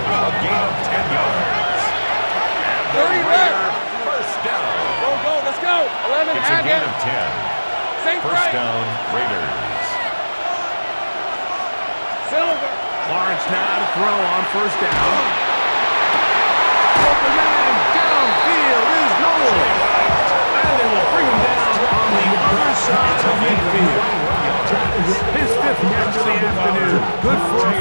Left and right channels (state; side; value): inverted; both; correlation -1.00